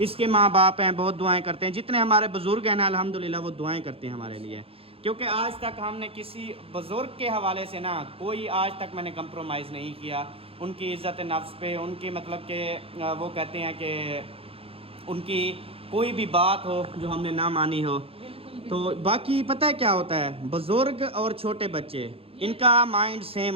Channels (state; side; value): late; left; 0.27 ms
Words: माँ बाप हैं बहुत दुआएं करते हैं, जितने हमारे बुज़ुर्ग हैं ना अल्हम्दुलिल्लाह वो दुआएं करते हैं हमारे लिए। क्योंकि आज तक हमने किसी बुज़ुर्ग के हवाले से ना कोई आज तक मैंने कंप्रोमाइज़ नहीं किया उनकी इज़्ज़त नफ्स पे, उनकी मतलब के वो कहते हैं कि उनकी कोई भी बात हो जो हमने ना मानी हो। तो बाकी पता है क्या होता है, बुज़ुर्ग और छोटे बच्चे इनका माइंड